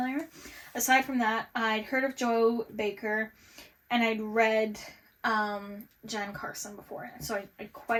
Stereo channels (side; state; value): both; identical; correlation 1.00